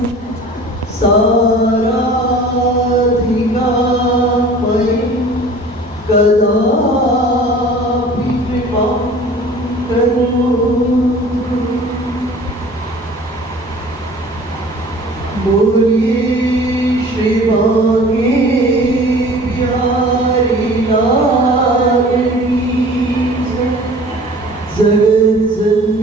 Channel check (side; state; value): both; normal; correlation 0.46